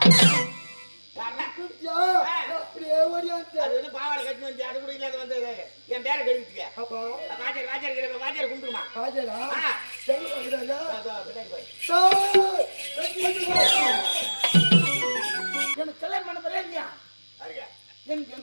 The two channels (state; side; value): inverted; both; correlation -1.00